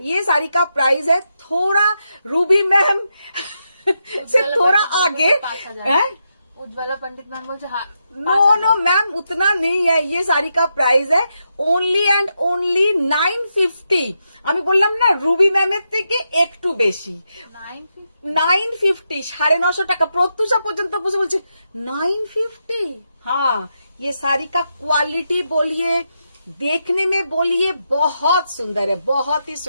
ये साड़ी का प्राइस है थोड़ा रूबी मैम से थोड़ा आगे है। उज्ज्वला पंडित मैम बोलছে नो मैम उतना नहीं है, ये साड़ी का प्राइस है ओनली एंड ओनली 950। আমি বললাম না রুবি ম্যামের থেকে একটু বেশি, 950, 950 টাকা। প্রত্যুষা পর্যন্ত বসে বলছে 950। हाँ, ये साड़ी का क्वालिटी बोलिए, देखने में बोलिए बहुत सुंदर है, बहुत ही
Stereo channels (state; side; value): inverted; both; correlation -0.84